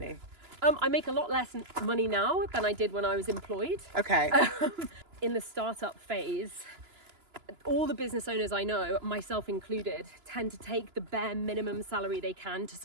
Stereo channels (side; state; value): left; late; 2.9 ms